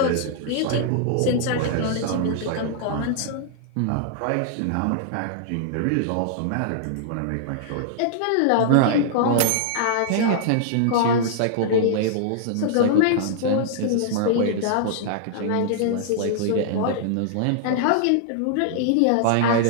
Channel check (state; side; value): different; both; correlation -0.01